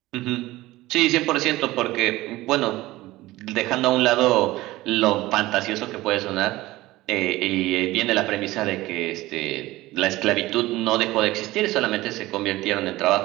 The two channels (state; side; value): quieter; left; 18.0 dB